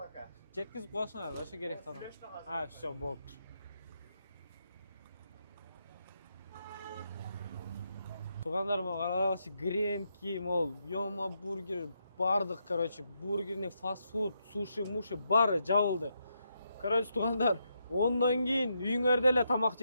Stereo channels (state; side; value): inverted; both; correlation -0.81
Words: Жеткизип коесуңар, ошо керек тамам. Всё, болуптур. Тугандарыма карагачы, гренки, мол, Йома бургер, бардык, короче, бургерный фастфуд, суши, муши баары жабылды. Короче, тугандар, ондон кийин үйүңөрдө эле тамак